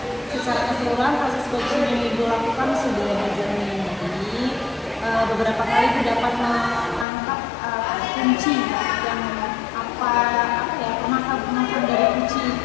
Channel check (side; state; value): right; drops out; at 7.1 s